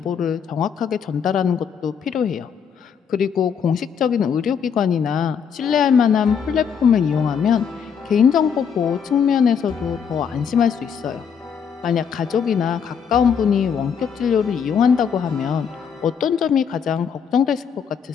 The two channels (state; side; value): quieter; right; 7.1 dB